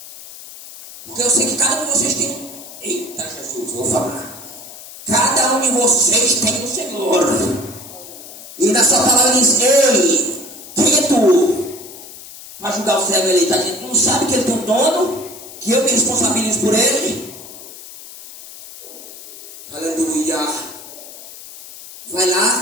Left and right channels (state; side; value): noise; left; hiss, 16 dB below the sound